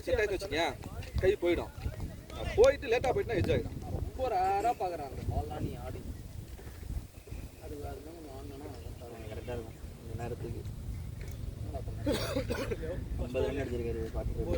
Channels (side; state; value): both; identical; correlation 1.00